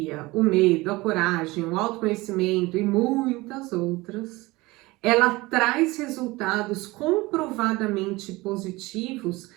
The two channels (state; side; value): quieter; left; 21.3 dB